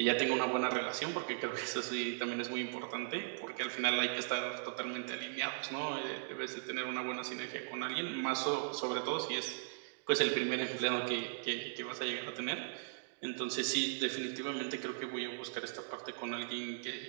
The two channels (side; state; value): left; silent; digital silence